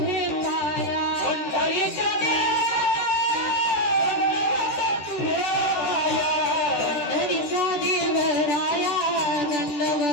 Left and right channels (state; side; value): late; right; 14 ms